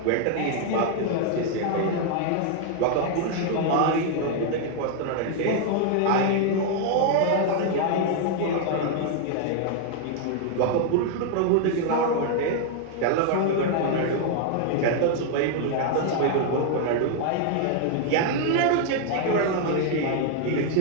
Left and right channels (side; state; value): both; different; correlation 0.00